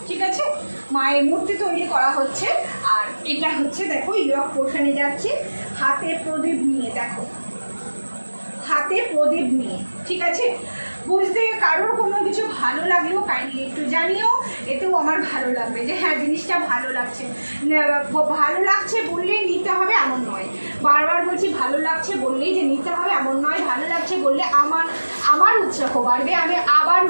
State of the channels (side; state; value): both; inverted; correlation -1.00